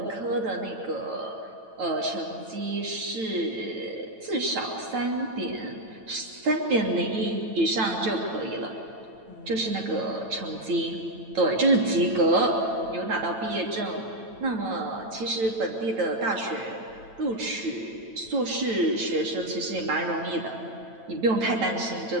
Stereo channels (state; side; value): late; left; 9.0 ms